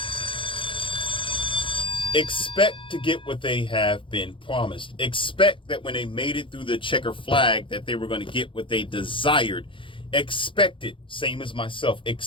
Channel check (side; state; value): right; late; 0.25 ms